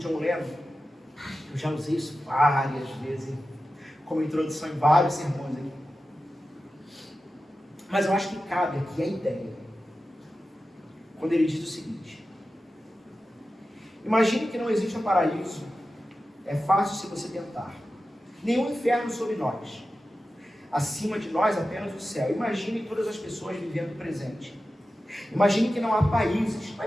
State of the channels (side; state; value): both; normal; correlation 0.93